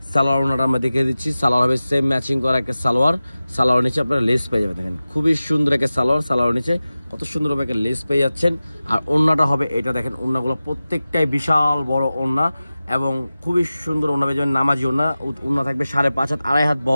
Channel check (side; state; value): both; inverted; correlation -0.96